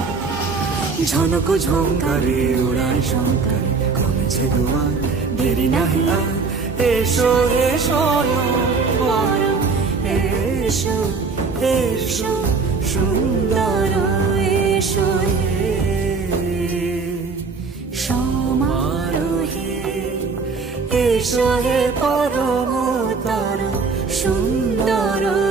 ঝনক ঝঙ্কারে উড়ায় শঙ্কারে কমেছে দুয়ার দেরি নাহি আর এসো এসো পরম এসো এসো সুন্দর এসো হে সমারোহে এসো হে পরমতর সুন্দর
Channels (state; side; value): quieter; left; 4.6 dB